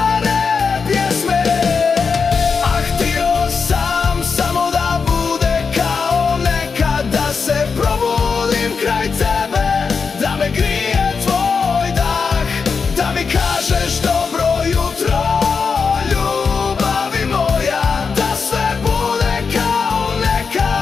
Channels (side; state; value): right; quieter; 5.3 dB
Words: pjesme? Ah, htio sam samo da bude kao nekad, da se probudim kraj tebe, da me grije tvoj dah, da mi kažeš dobro jutro, ljubavi moja, da sve bude kao